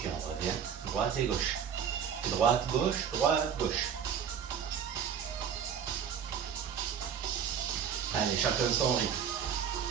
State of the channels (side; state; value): left; quieter; 7.9 dB